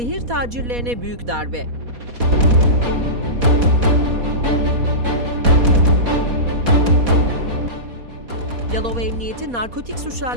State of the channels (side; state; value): left; late; 4.2 ms